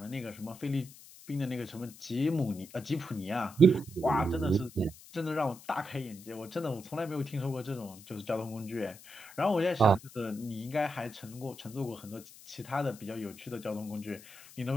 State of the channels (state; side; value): noise; left; hiss, 19 dB below the sound